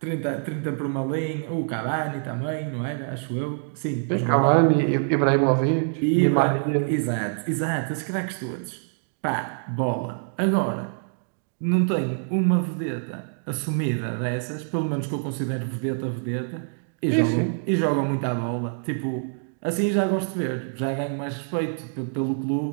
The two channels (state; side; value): silent; left; digital silence